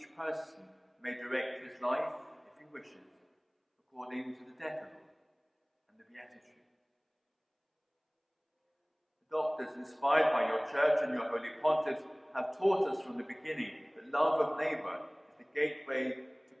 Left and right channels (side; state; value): both; identical; correlation 1.00